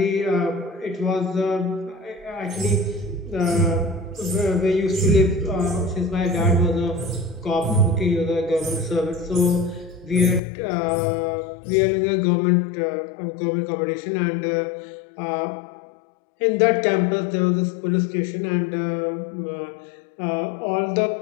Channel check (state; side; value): drops out; right; at 10.4 s